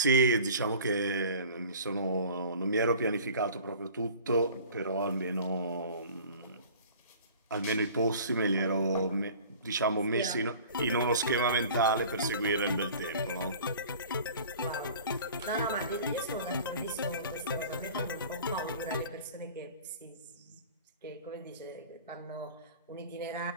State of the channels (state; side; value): inverted; both; correlation -0.45